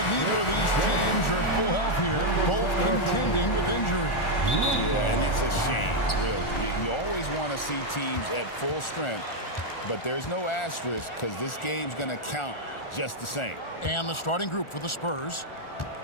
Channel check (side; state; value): right; late; 1.4 ms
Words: neither of these teams are at full health here, both contending with injury. Yeah, and it's a shame, really. You always want to see teams at full strength, but there's no asterisk because this game's going to count just the same. And the starting group for the Spurs.